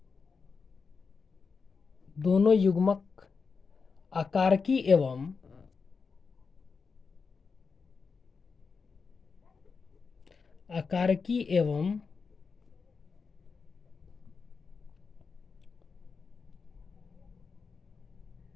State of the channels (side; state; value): right; quieter; 5.1 dB